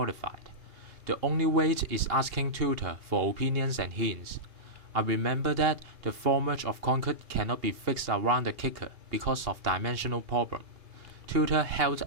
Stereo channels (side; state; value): left; late; 2.7 ms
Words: The only way is asking tutor for opinions and hints. I remember that the formwork of concrete cannot be fixed around the kicker because of dimensional problem. Tutor helped